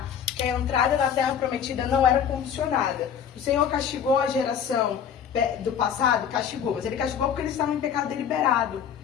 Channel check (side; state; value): right; quieter; 8.1 dB